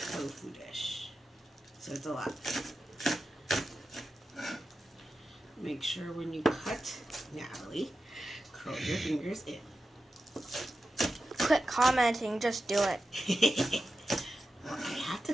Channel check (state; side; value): normal; both; correlation 0.92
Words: dish. So it's a lot. Make sure when you cut, Natalie, curl your fingers in. Quit commenting, just do it. Well, I have to